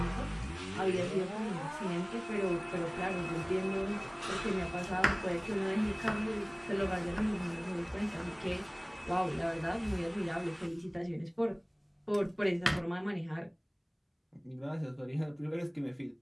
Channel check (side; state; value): both; identical; correlation 1.00